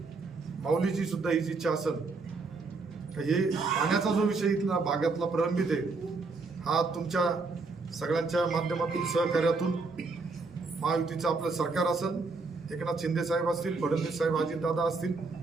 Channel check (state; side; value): quieter; left; 4.0 dB